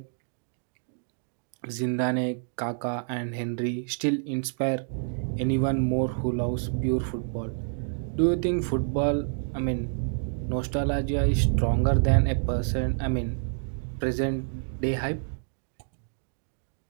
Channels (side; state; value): left; silent; digital silence